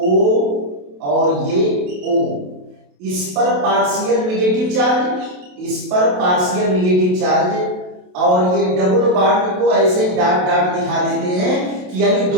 और ये O, इस पर पार्शियल निगेटिव चार्ज, इस पर पार्शियल निगेटिव चार्ज, और ये डबल बॉन्ड को ऐसे डॉट डॉट दिखा देते हैं कि यानी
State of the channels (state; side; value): late; left; 27 ms